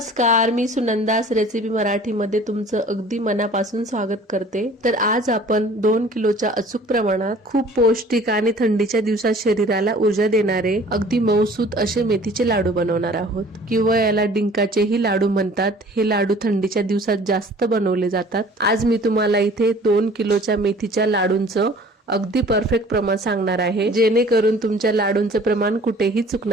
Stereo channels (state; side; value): normal; both; correlation 0.50